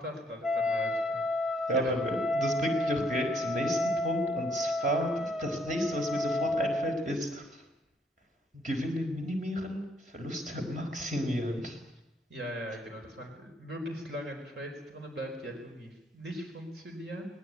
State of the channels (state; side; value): normal; both; correlation 0.70